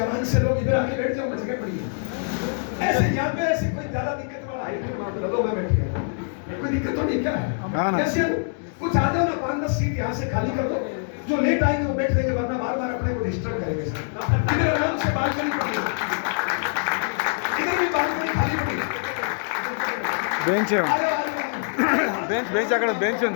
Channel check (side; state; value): right; silent; digital silence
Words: से लोग इधर आके बैठ जाओ, मैं जगह पड़ी है। ऐसे यहाँ पे ऐसी कोई ज्यादा दिक्कत वाला हाइट लो, मैं बैठ गया, कोई दिक्कत तो नहीं क्या है? कैसे कुछ आ जाओ ना, 5-10 सीट यहाँ से खाली कर दो, जो लेट आएंगे वो बैठ जाएंगे, वरना बार बार अपने को डिस्टर्ब करेंगे। इधर आराम से बालकनी पड़ी है, इधर भी बालकनी खाली पड़ी है, बेंच बेंच अక్కడ बेंच